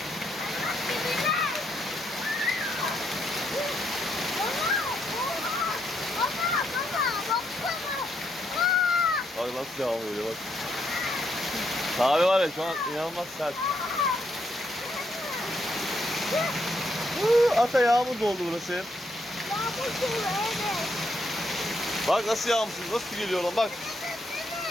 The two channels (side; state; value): both; normal; correlation 0.76